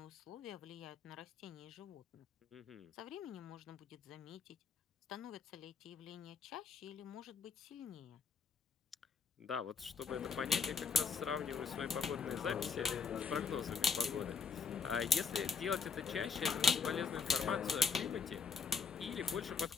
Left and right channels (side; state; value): right; quieter; 5.7 dB